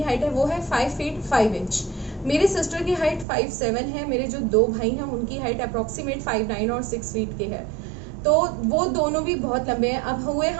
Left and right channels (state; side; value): drops out; left; at 3.2 s